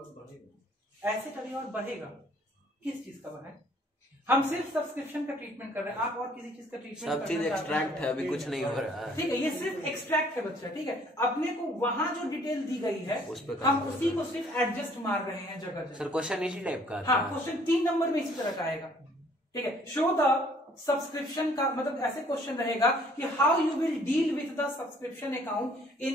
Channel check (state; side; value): normal; both; correlation 0.59